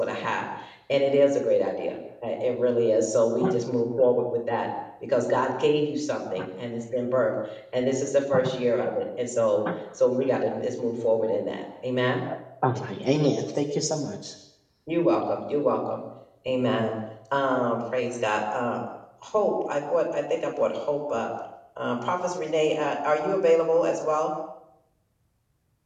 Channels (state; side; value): identical; both; correlation 1.00